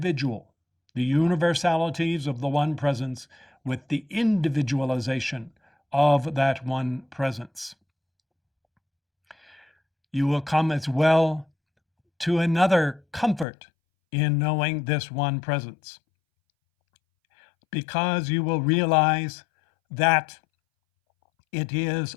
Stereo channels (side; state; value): right; drops out; at 13.5 s